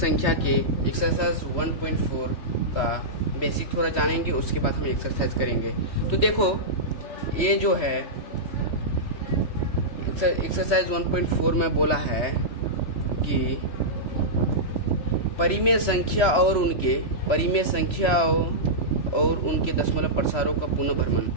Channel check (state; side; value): late; right; 3.1 ms